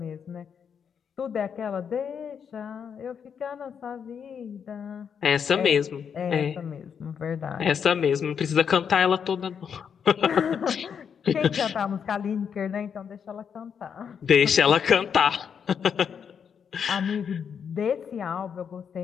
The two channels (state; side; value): quieter; right; 7.2 dB